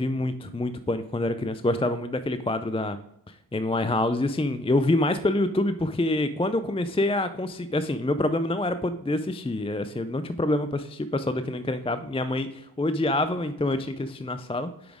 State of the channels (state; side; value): normal; both; correlation 0.64